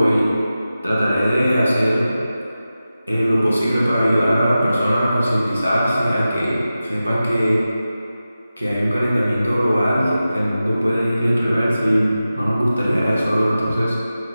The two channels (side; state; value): both; inverted; correlation -0.94